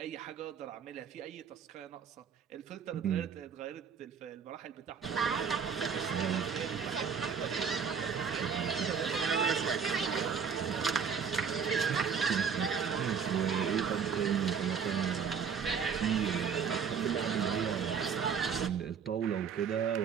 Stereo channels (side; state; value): left; quieter; 6.6 dB